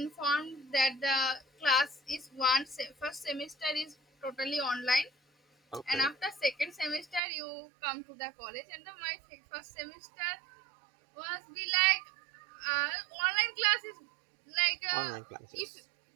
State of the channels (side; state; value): left; drops out; at 7.2 s